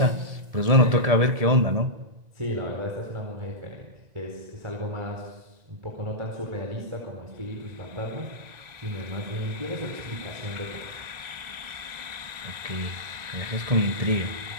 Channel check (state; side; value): late; left; 1.9 ms